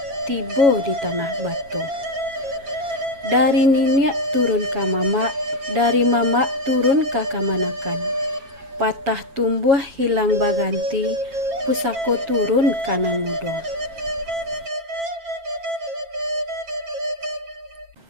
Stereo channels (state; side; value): late; left; 7.2 ms